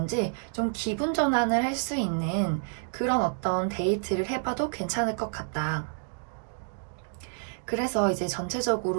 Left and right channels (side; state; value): left; silent; digital silence